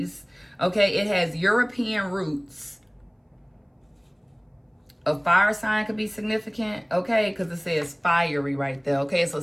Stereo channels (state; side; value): identical; both; correlation 1.00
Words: Okay, it has European roots. A fire sign could be significant, okay, because it says fiery right there. Okay, it's a